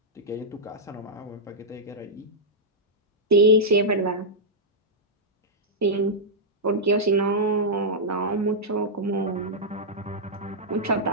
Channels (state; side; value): normal; both; correlation -0.08